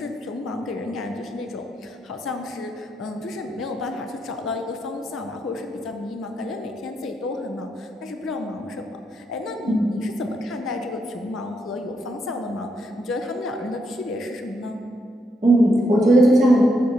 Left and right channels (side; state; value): both; normal; correlation 0.79